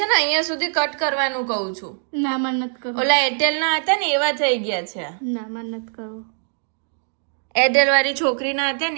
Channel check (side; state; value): left; silent; digital silence